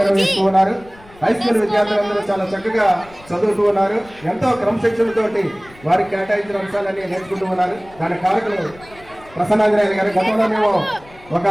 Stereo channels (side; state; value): left; noise; rumble, 23 dB below the sound